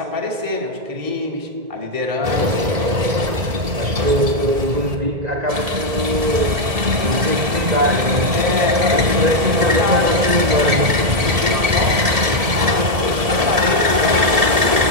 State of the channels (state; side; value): late; left; 1.7 ms